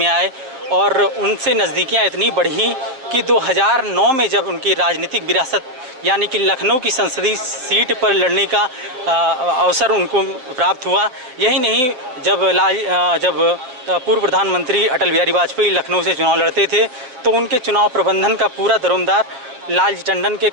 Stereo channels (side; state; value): left; late; 7.7 ms